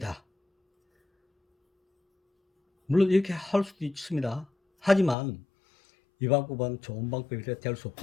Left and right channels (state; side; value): drops out; right; at 5.2 s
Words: 물론 이렇게 할 수도 있습니다. 하지만 이 방법은 좋은 방법이 될 수